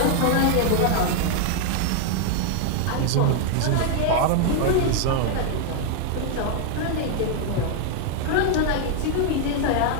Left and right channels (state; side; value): different; both; correlation 0.00